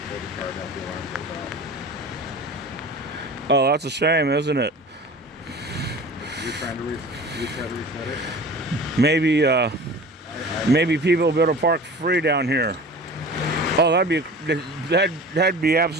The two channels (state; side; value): normal; both; correlation 0.39